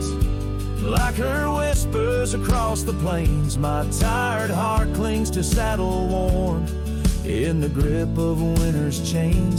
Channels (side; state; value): both; identical; correlation 1.00